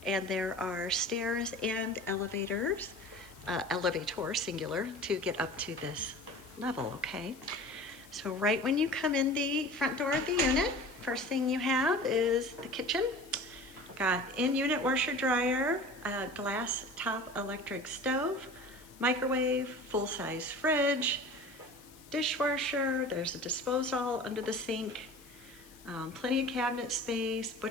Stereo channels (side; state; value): left; noise; hiss, 23 dB below the sound